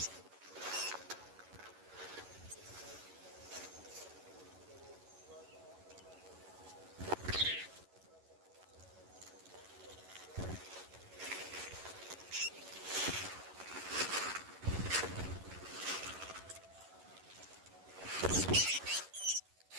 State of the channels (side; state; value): left; late; 11 ms